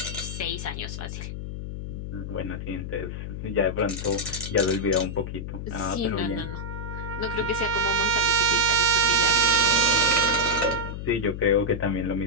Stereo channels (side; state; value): left; noise; hum, 7 dB below the sound